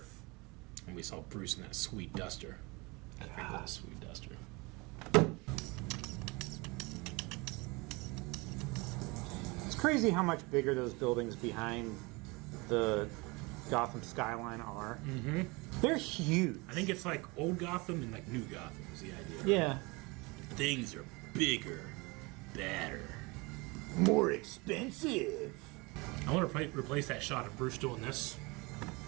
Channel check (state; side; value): quieter; left; 26.2 dB